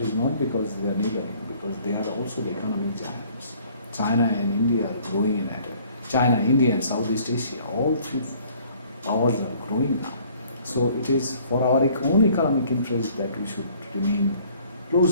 not because they are neighboring, because they are also the economic giants. China and India are growing at it. China, India, and Southeast Asia, all three powers are growing now. So it is for our own economic interest that we should remain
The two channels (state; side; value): inverted; both; correlation -0.57